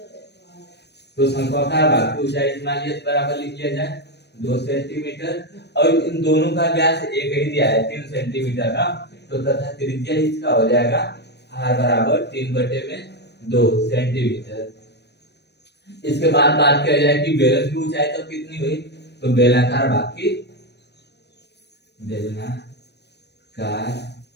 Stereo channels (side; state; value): right; late; 0.49 ms